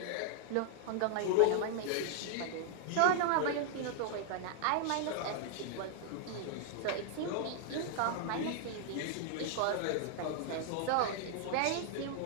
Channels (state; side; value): different; both; correlation 0.00